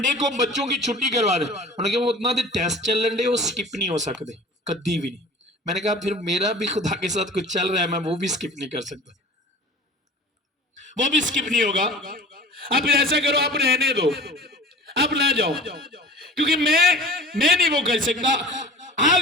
को बच्चों की छुट्टी करवा दे। उन्होंने कहा वो उतना दे टेस्ट चल रहे, वो स्किप नहीं हो सकते कभी भी नहीं। मैंने कहा फिर मेरा भी खुदा के साथ कुछ चल रहा है, मैं वो भी स्किप नहीं कर सकता, वो भी स्किप नहीं होगा। अब फिर ऐसा करो, आप रहने दो, आप ना जाओ, क्योंकि मैं नहीं वो कर सकता।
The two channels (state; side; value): normal; both; correlation 0.41